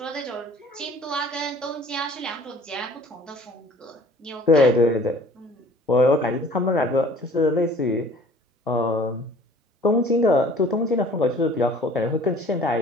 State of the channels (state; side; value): normal; both; correlation 0.51